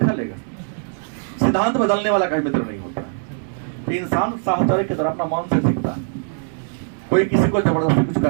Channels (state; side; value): silent; left; 59 dB below the other